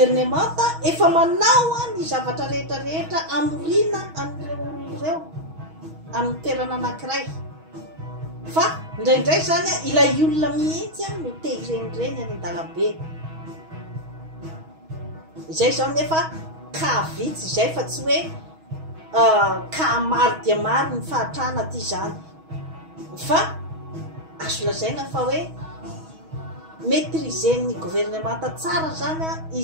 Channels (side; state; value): left; late; 6.3 ms